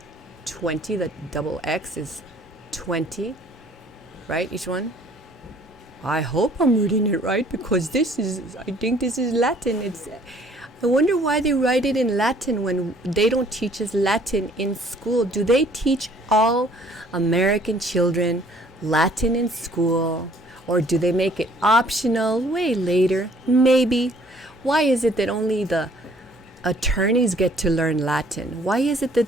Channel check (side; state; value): both; normal; correlation 0.58